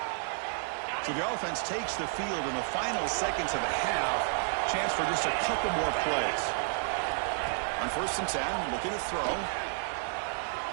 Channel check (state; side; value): silent; left; digital silence